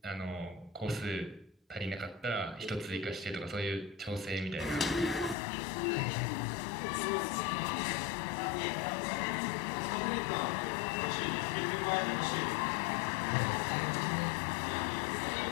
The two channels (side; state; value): right; drops out; at 5.4 s